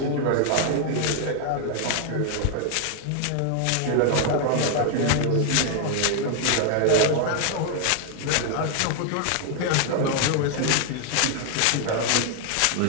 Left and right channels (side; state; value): both; different; correlation 0.00